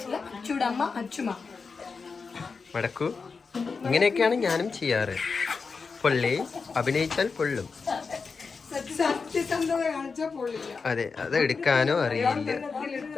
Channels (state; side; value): quieter; right; 4.9 dB